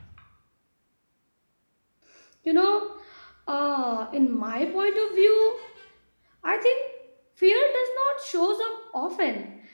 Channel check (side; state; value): both; inverted; correlation -1.00